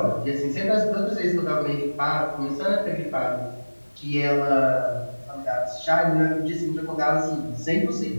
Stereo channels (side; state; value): both; inverted; correlation -1.00